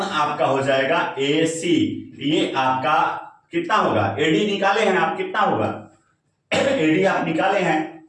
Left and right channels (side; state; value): both; identical; correlation 1.00